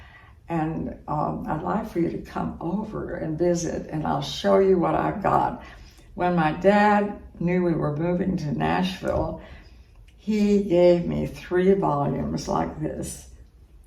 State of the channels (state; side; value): identical; both; correlation 1.00